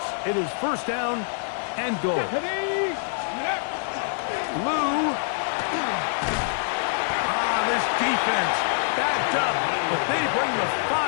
It is first down and goal. Lou. This defense backed up, but they bring the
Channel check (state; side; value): silent; right; 62 dB below the other